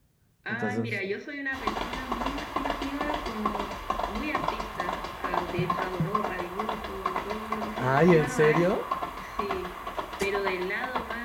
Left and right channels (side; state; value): both; identical; correlation 1.00